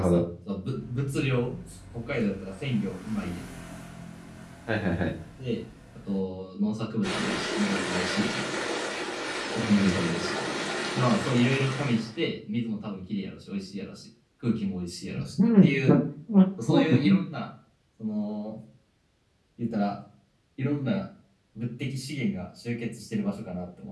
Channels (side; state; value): both; identical; correlation 1.00